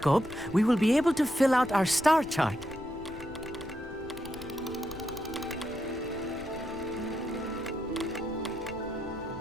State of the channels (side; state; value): left; noise; rumble, 17 dB below the sound